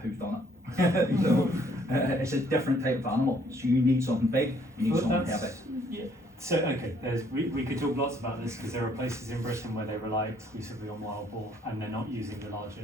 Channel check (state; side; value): normal; both; correlation 0.64